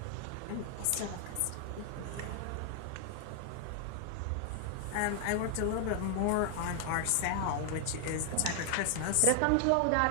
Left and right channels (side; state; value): both; different; correlation 0.00